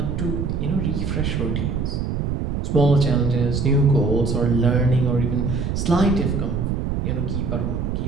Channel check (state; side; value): noise; right; rumble, 1 dB below the sound